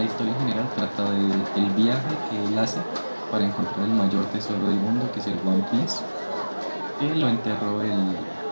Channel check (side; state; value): both; inverted; correlation -1.00